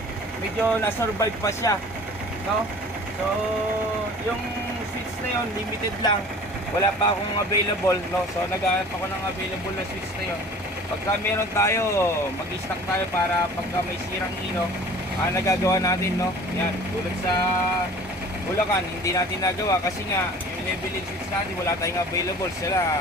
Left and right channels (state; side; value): normal; both; correlation 0.45